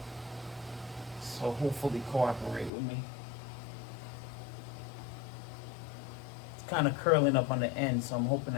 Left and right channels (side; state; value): right; drops out; at 2.7 s